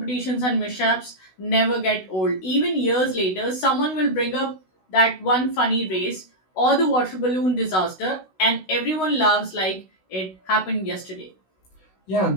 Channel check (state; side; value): late; right; 16 ms